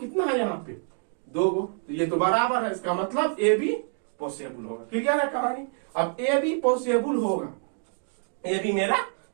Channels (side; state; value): left; silent; 56 dB below the other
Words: है यहाँ पे 2 गो, तो ये तो बराबर है, इसका मतलब ए बी पॉसिबल होगा। क्लियर है कहानी। अब ए बी पॉसिबल होगा, ए बी मेरा